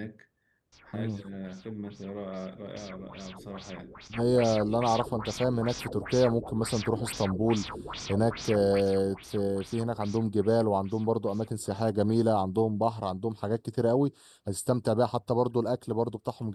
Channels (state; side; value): identical; both; correlation 1.00